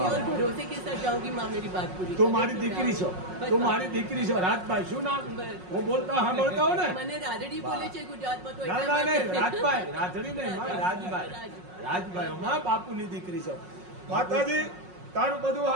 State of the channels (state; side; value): late; left; 5.5 ms